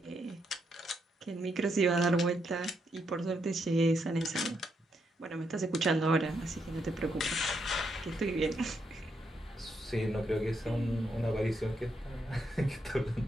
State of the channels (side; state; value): both; normal; correlation 0.79